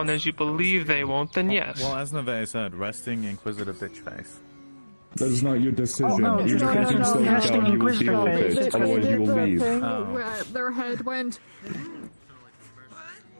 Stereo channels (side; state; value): both; inverted; correlation -1.00